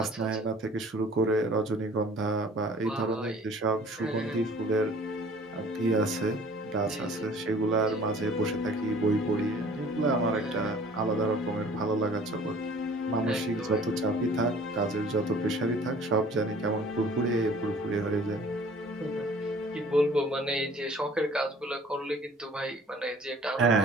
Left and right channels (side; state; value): both; normal; correlation 0.51